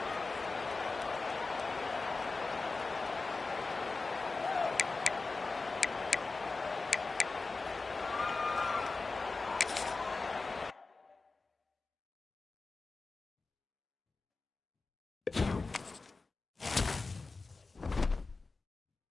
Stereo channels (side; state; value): right; quieter; 3.8 dB